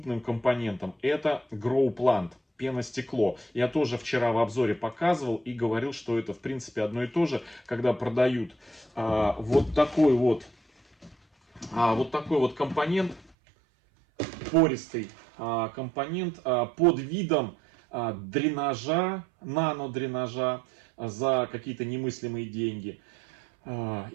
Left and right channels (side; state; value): left; drops out; at 13.3 s